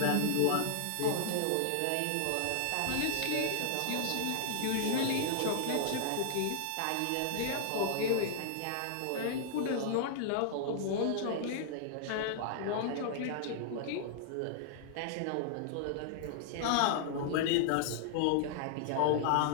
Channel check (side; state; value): both; different; correlation -0.01